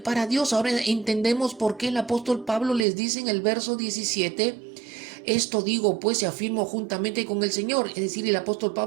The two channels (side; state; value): left; drops out; at 2.9 s